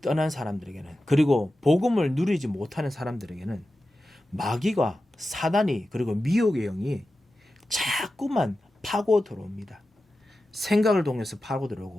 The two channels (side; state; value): both; normal; correlation 0.93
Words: 떠난 사람들에게는, 그리고 복음을 누리지 못하는 사람들에게는 마귀가, 사단이, 그리고 미혹의 영이 자꾸만 파고 들어옵니다. 생각을 통해서 파고